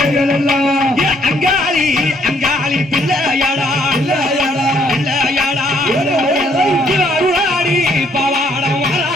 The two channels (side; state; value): both; normal; correlation 0.67